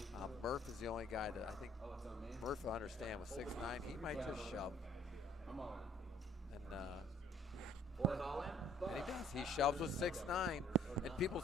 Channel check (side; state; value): both; normal; correlation 0.59